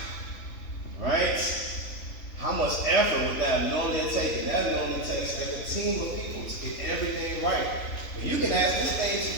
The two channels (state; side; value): late; right; 3.5 ms